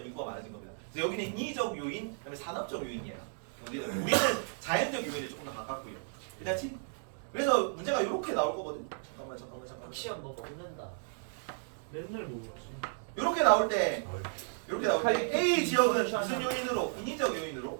인구가 많아진 겁니다. 그래서 여기는 인위적 요인, 그다음에 산업적 요인이에요. 우리는 자연적 요인에 조금 더 가깝고요. 그렇지? 그래서 문제가 이렇게 나올 거거든. 잠깐만. 시험 뭐 먹는다. 맨날 먹었지. 이렇게 나올 때 A 지역은 무슨 요인으로? 인위적 요인으로,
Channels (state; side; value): silent; left; digital silence